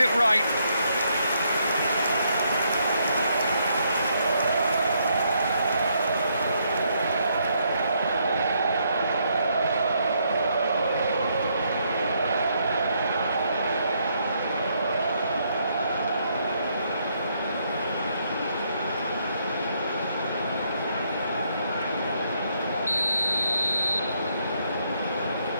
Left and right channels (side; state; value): both; inverted; correlation -0.74